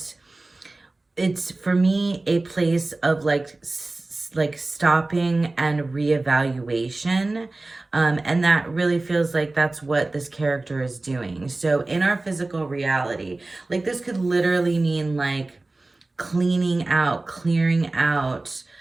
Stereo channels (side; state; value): left; quieter; 3.1 dB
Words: it's for me a place of like stopping and reevaluation. And that really feels like that's what this character is doing. So in our physical reality, like this could literally mean like clearing out